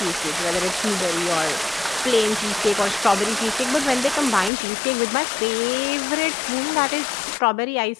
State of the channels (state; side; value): drops out; right; at 4.5 s